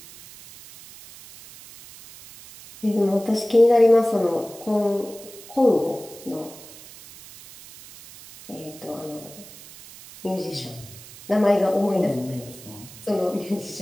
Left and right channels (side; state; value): right; noise; hiss, 18 dB below the sound